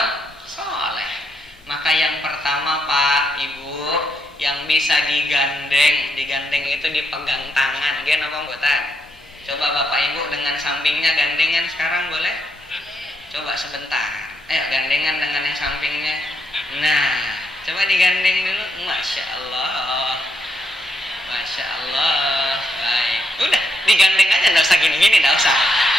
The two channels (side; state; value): both; normal; correlation 0.79